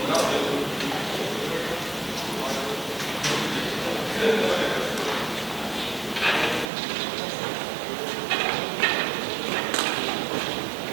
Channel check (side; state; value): left; drops out; at 6.7 s